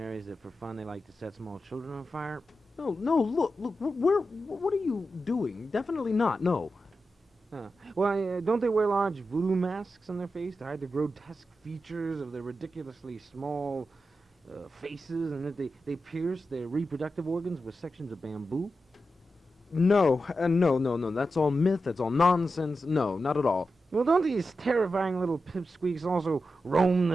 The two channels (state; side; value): normal; both; correlation 0.90